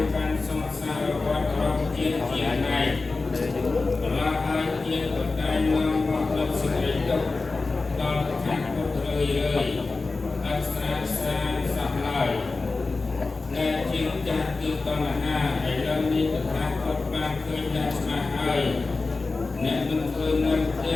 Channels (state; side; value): quieter; right; 3.7 dB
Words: កាន់សង្សារវដ្តរបស់ជាតិជាណៃបន្លាហើយជាតិក៏តែនាំមកលើសេចក្តីទុក្ខដល់តថាពុទ្ធរឿយអស្ចារ្យសានសោះឡើយដែលជាចាស់គឺតណ្ហាឥឡូវនេះតថាពុទ្ធបានឃើញយ៉ាងច្បាស់ហើយអ្នកមិនឃើញនៅផ្ទ